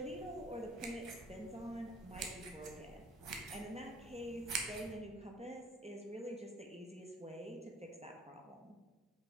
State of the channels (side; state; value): both; normal; correlation 0.54